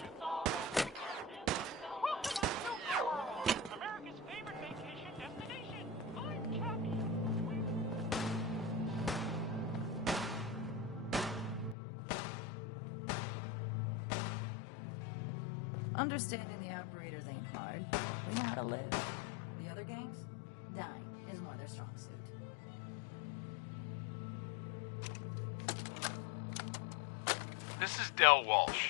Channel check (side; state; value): right; drops out; at 11.8 s